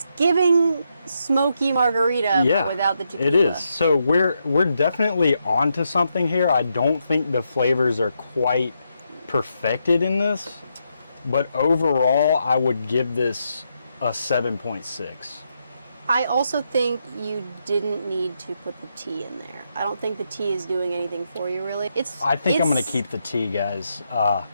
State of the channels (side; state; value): both; inverted; correlation -0.81